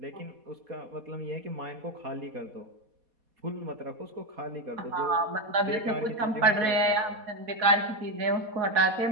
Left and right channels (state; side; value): late; left; 4.2 ms